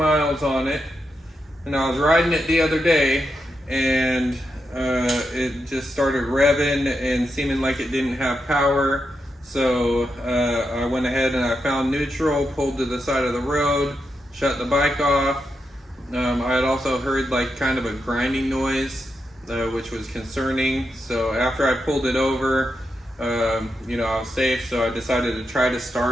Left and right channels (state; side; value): normal; both; correlation 0.85